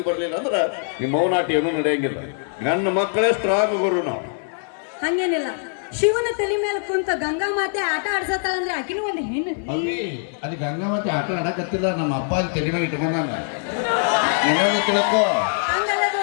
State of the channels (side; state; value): right; silent; 64 dB below the other